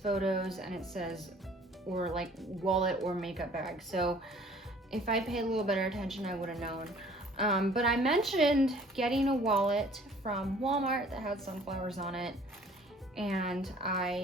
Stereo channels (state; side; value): normal; both; correlation 0.53